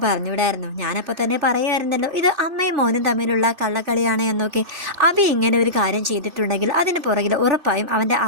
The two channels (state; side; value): late; left; 2.6 ms